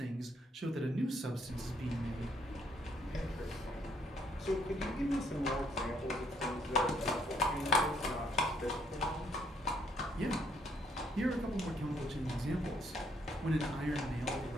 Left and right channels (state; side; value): normal; both; correlation 0.69